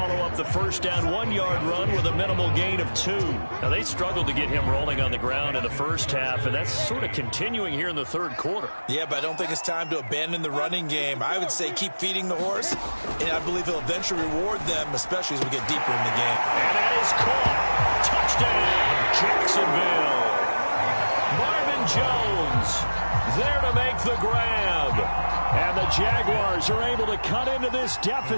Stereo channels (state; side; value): inverted; both; correlation -1.00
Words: up the first down 1-yard run with a minimal gain of 2. Now, they struggled to get him rolling on the ground in the first half, and that's sort of continuing here in the third quarter. Yeah, but I don't think it's time to abandon the running game. I would say keep feeding the horse, and I believe he'll eventually reward them, especially as we get deeper in the game. And that is caught. Touchdown, Jacksonville. Marvin Jones there to make the grab. And the Jaguars are able to cut into this